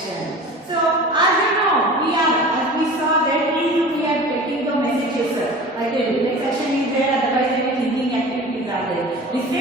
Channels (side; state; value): both; normal; correlation 0.38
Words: So as you know, as we saw that we are taking the messages. Like the reflex action is there, otherwise the thinking activities are there.